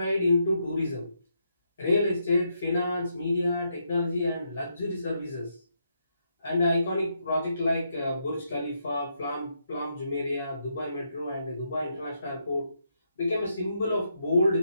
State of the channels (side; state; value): both; inverted; correlation -0.79